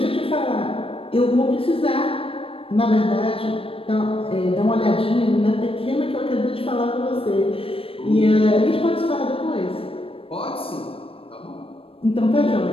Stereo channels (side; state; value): right; late; 0.27 ms